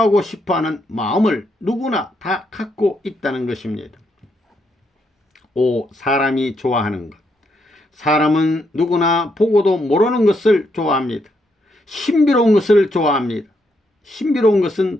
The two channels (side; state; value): both; normal; correlation 0.77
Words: 싶어하는 마음을 누구나 다 갖고 있다는 것입니다. 5. 사람이 좋아하는 것. 사람은 누구나 보고도 모르는 것을 좋아합니다. 신비로운 것을 좋아합니다. 신비로운